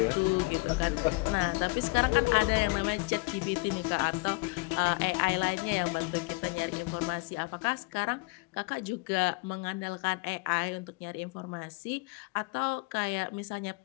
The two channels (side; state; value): right; quieter; 28.4 dB